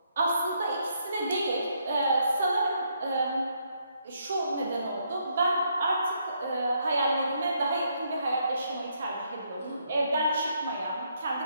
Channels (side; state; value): both; inverted; correlation -0.74